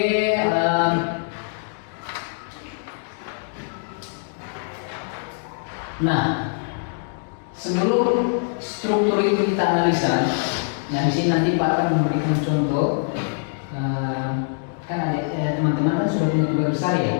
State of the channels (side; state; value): right; silent; 62 dB below the other